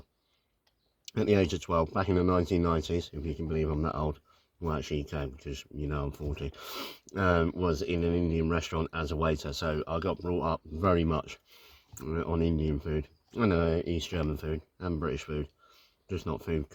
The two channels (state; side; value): identical; both; correlation 1.00